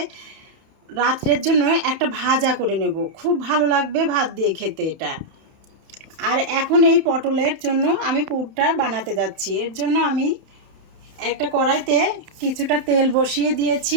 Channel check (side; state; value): left; late; 31 ms